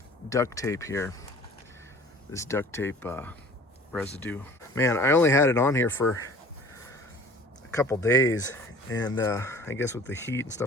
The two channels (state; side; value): normal; both; correlation 0.47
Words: duct tape here. This duct tape residue. Man, I only had it on here for a couple days, and I guess with the heat and